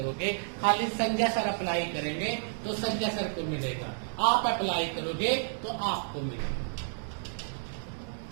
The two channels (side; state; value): left; silent; 57 dB below the other